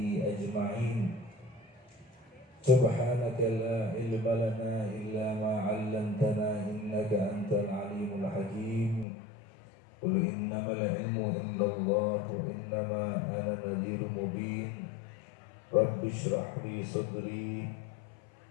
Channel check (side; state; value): right; drops out; at 9.1 s